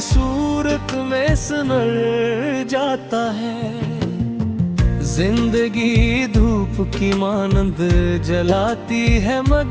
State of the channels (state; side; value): identical; both; correlation 1.00